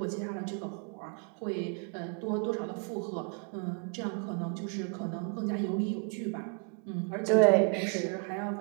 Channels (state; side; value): quieter; left; 36.4 dB